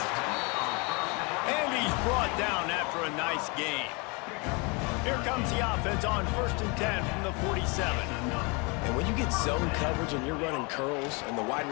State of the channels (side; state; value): right; quieter; 30.1 dB